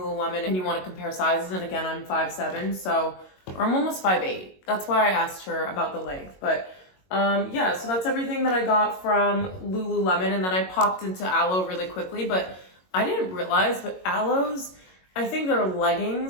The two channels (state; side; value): late; right; 22 ms